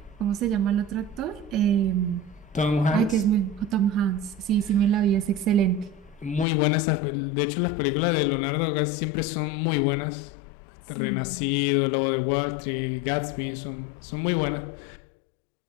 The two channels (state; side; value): drops out; right; at 6.5 s